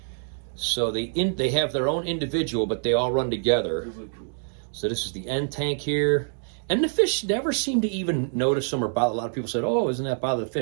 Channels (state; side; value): silent; left; 61 dB below the other